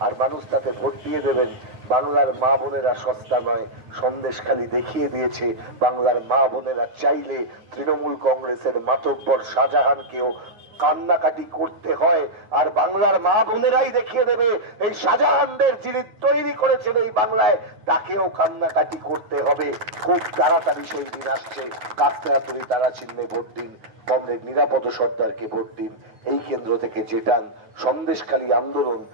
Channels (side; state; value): left; late; 9.5 ms